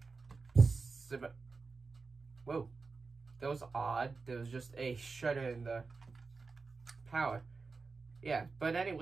whoa, that was odd. There was just a shutter in the power. Yeah, but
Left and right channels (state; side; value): quieter; left; 4.3 dB